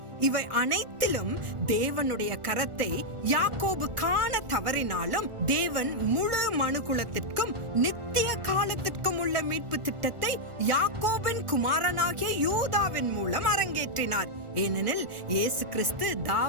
இவை அனைத்திலும் தேவனுடைய கரத்தை யாக்கோபு காண தவறினாலும் தேவன் முழு மனுகுலத்திற்கும் நித்திய காலத்திற்கும் உள்ள மீட்பு திட்டத்தை யாக்கோபின் குமாரனாகிய யூதாவின் மூலம் அரங்கேற்றினார். ஏனெனில் இயேசு கிறிஸ்து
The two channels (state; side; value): late; left; 1.4 ms